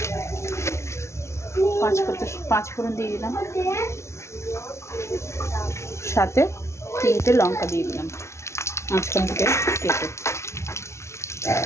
পাঁচফোড়ন দিয়ে দিলাম, সাথে তিনটে লঙ্কা দিয়ে দিলাম মাঝখান থেকে কেটে।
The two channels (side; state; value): right; late; 0.13 ms